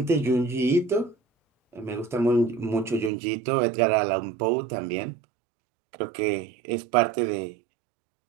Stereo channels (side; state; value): left; drops out; at 3.1 s